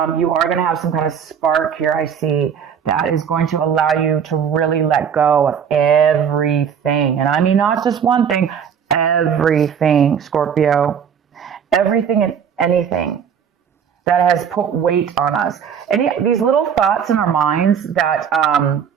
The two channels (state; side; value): quieter; left; 7.6 dB